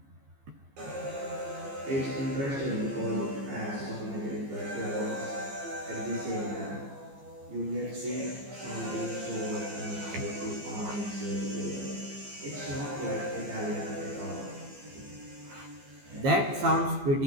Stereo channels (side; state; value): left; late; 15 ms